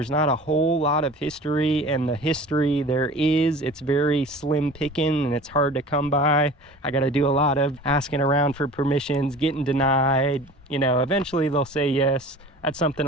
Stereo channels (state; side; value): normal; both; correlation 0.41